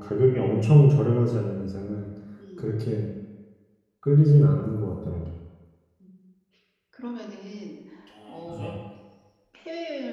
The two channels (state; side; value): identical; both; correlation 1.00